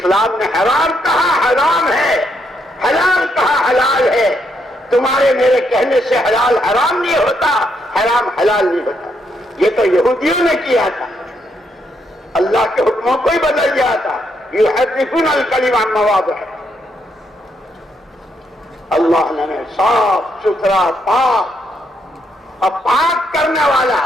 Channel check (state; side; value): normal; both; correlation 0.76